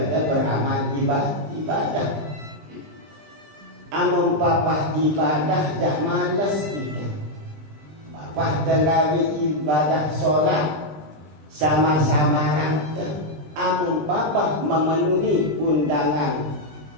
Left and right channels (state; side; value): late; left; 20 ms